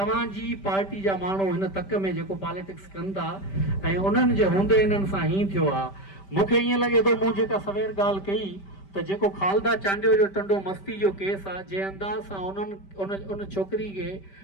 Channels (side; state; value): right; late; 5.1 ms